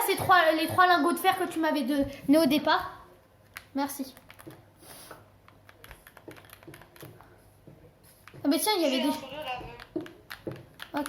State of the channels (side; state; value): both; identical; correlation 1.00